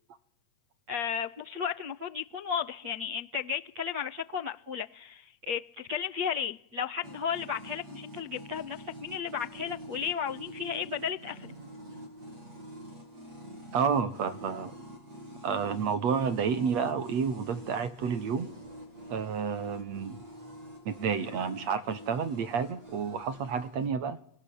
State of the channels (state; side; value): late; left; 8.4 ms